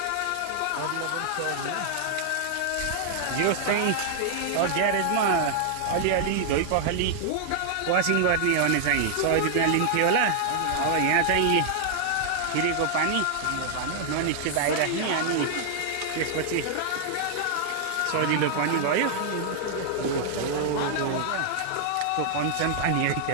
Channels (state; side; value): different; both; correlation -0.01